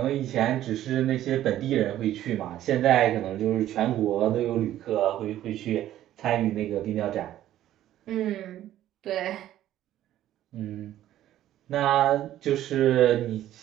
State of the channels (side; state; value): left; quieter; 12.8 dB